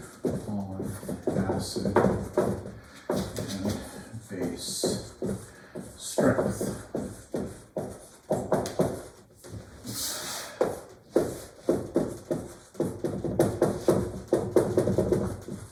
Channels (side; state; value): both; identical; correlation 1.00